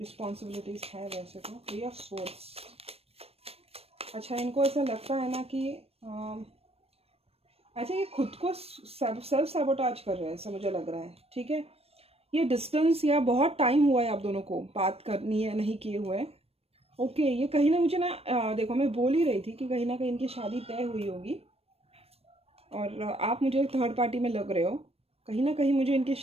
है वैसे तो। 3 ऑफ सोर्स, अच्छा इनको ऐसा लगता है ना कि अच्छा ये खुद को सेल्फ सैबोटाज कर रहे हैं, ऐसा मुझे लग रहा है। ठीक है, ये डिस्टेंस या बहुत टाइम हुआ है आप दोनों को बात करनी है नहीं किए हुए। ओके, ये कहीं ना मुझे ना देखो मैं बोल ही रही थी कि कहीं ना कहीं इनकी शादी तय हुई होगी और आप मुझे थर्ड पार्टी में लग रहे हो। कहीं ना कहीं मुझे इनकी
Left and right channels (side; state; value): left; late; 0.29 ms